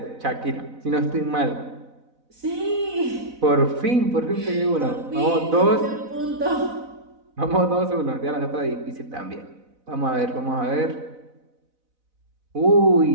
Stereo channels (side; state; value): left; late; 4.0 ms